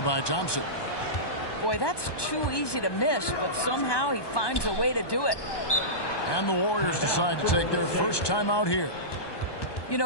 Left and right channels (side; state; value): right; late; 1.2 ms